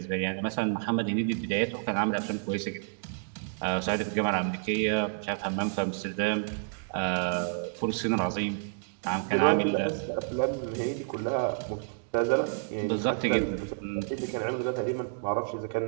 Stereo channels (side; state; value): left; silent; digital silence